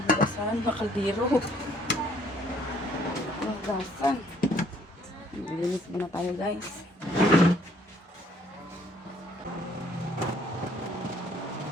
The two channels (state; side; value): normal; both; correlation 0.63